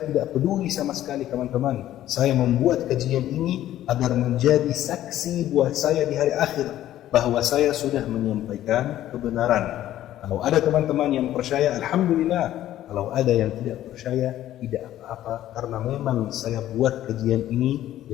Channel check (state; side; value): quieter; right; 13.0 dB